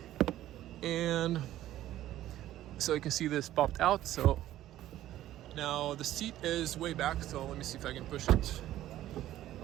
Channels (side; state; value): left; quieter; 13.6 dB